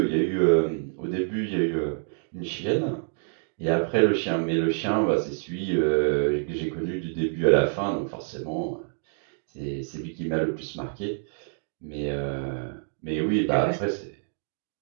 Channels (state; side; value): silent; left; digital silence